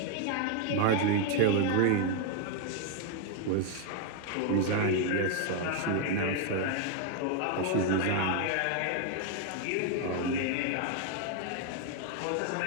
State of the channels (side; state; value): both; different; correlation 0.01